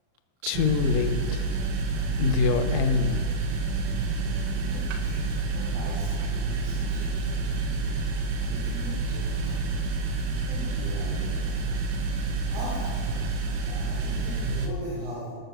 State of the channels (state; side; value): late; left; 35 ms